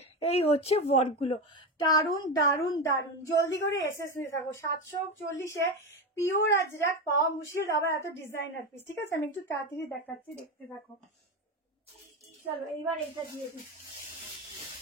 এই হচ্ছে ওয়ার্কগুলো, দারুন দারুন দারুন। জলদি করে এসএস নিয়ে থাকো। 740-এ পিওর আজরাক পাওয়া মুশকিল, আবার এত ডিজাইনার পিস, ঠিক আছে। আমি একটু তাড়াতাড়ি দেখাচ্ছি, দেখতে থাকো। চলো এইবার এটা দিয়ে দিই,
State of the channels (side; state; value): both; normal; correlation 0.17